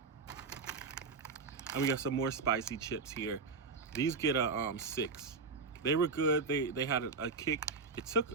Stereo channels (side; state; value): left; quieter; 4.5 dB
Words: And we got some more spicy chips here. These get a 6. They were good. They had a kick. It took